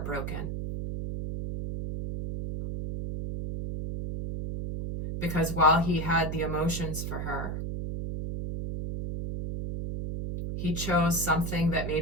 Because while he had the emotions for her, he chose something that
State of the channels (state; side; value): noise; right; hum, 4 dB below the sound